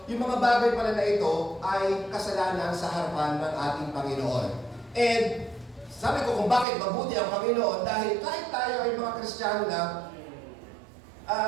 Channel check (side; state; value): left; drops out; at 6.7 s